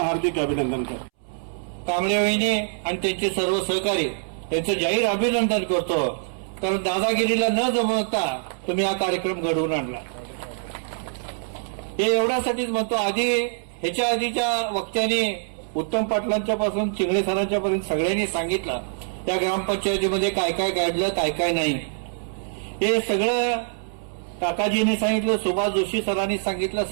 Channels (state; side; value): silent; left; 62 dB below the other